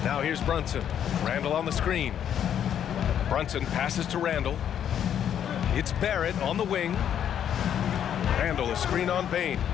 Now here's Brunson. Randall on the screen. Brunson passes to Randall. It's Barrett on the wing. Randall a screen on Bain.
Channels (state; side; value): quieter; right; 9.4 dB